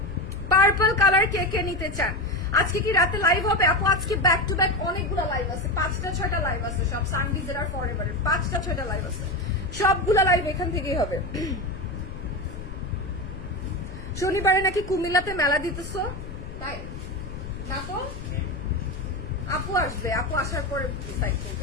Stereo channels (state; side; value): noise; left; rumble, 10 dB below the sound